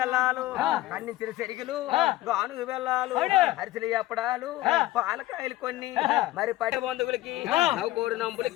అన్నించిన సెరుగులు, గానుగు బెల్లాలు, అరిసెలు ఎప్పడాలు, పాలకాయలు కొన్ని, మరి పట్టి బంధువులకి, నవ్వుకోడు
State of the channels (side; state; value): right; quieter; 16.7 dB